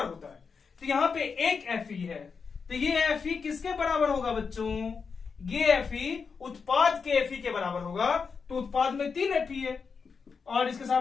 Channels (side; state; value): right; quieter; 5.5 dB